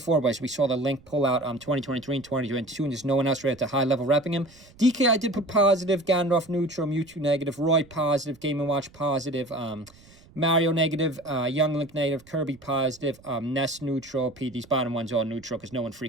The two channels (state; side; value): noise; right; rumble, 25 dB below the sound